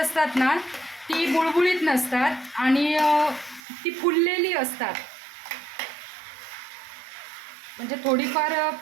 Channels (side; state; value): left; drops out; at 3.6 s